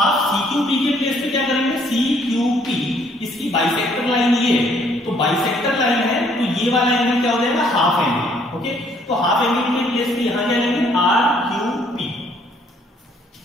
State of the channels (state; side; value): normal; both; correlation 0.64